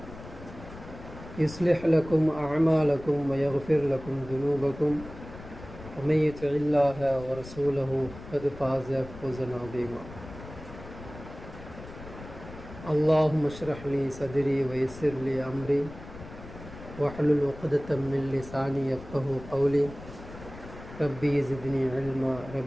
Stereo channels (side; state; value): left; noise; rumble, 15 dB below the sound